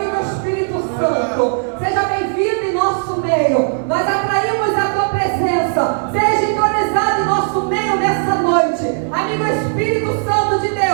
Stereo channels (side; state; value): left; silent; digital silence